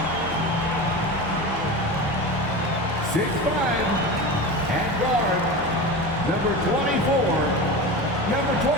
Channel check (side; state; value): both; normal; correlation 0.27